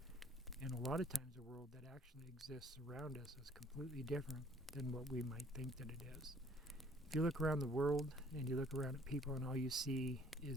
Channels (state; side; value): normal; both; correlation 0.58